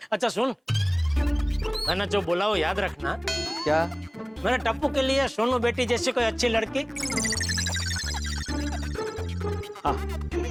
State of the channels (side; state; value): both; identical; correlation 1.00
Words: अच्छा सुन, मैंने जो बोला वो याद रखना। क्या? मेरे टप्पू के लिए सोनू बेटी जैसी कोई अच्छी लड़की। हाँ।